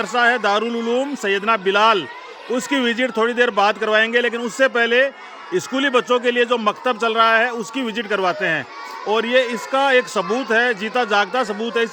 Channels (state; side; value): identical; both; correlation 1.00